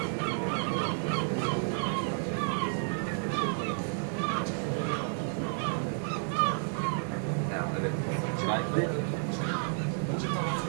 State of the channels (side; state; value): left; silent; 57 dB below the other